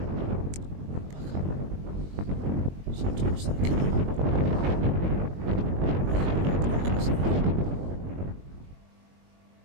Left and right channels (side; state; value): left; late; 21 ms